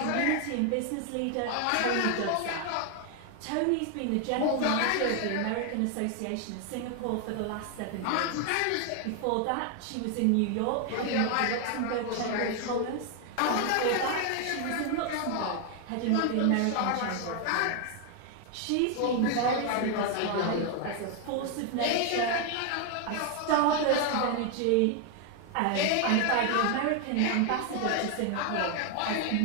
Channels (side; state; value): both; different; correlation 0.01